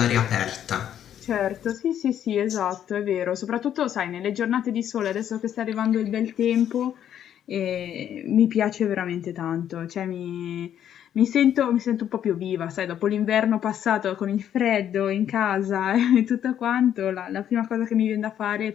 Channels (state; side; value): quieter; right; 10.1 dB